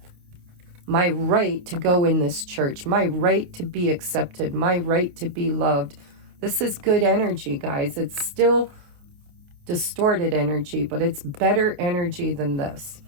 to go in this church, my right to be accepted, my right to be loved. This is good energy, guys. It's still distorted energy, but it's better energy than this.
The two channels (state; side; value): late; left; 28 ms